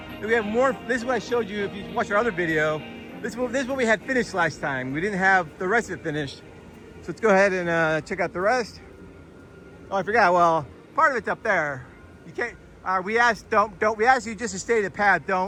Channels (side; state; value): both; identical; correlation 1.00